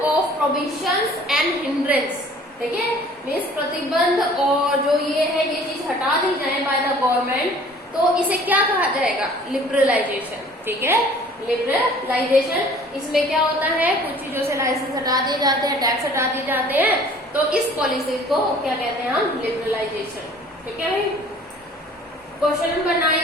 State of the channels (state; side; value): normal; both; correlation 0.51